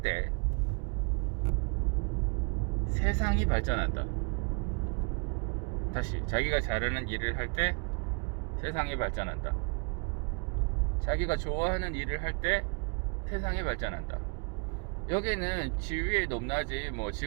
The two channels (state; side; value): quieter; left; 36.5 dB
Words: 때 세상이 발전한다. 다시, 자기가 잘하는 일을 할 때 세상이 발전한다. 자기가 좋아하는 일을 할 때 세상이 발전한다. 여기는 지위의 높낮이, 뭐